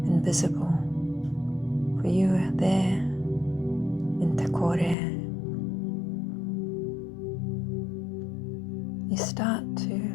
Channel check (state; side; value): drops out; right; at 5.0 s